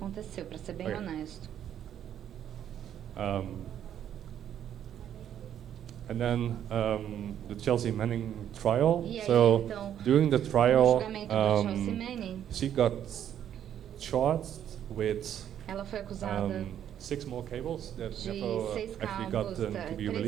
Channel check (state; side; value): quieter; left; 10.0 dB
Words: para ser bem honesto. And then the Chelsea Manning trial. E aí, so então, during the trial, she got charged with ela foi acusada 6 more cables that de never 6 actually cabos, got to be